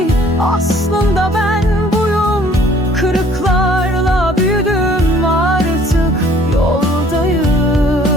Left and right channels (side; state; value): both; normal; correlation 0.57